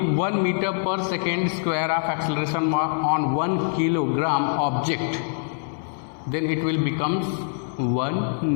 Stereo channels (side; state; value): right; silent; digital silence